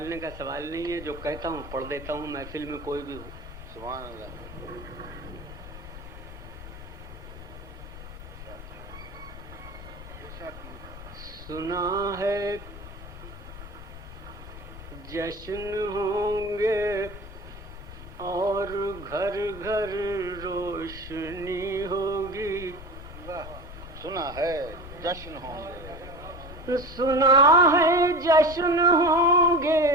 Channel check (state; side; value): noise; left; rumble, 13 dB below the sound